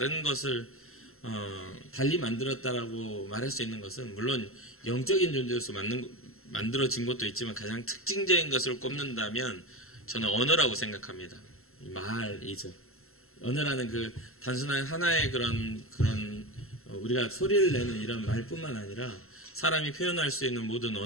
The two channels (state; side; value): late; right; 0.62 ms